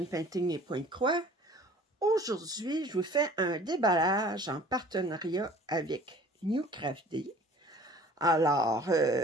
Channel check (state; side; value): normal; both; correlation 0.49